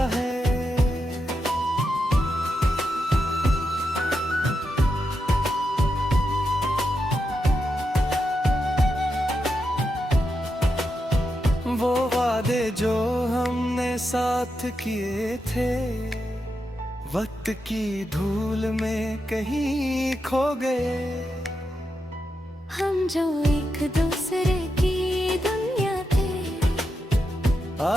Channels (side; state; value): both; normal; correlation 0.86